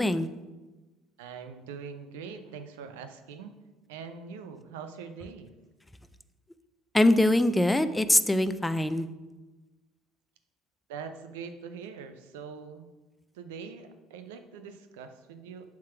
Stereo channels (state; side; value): normal; both; correlation 0.90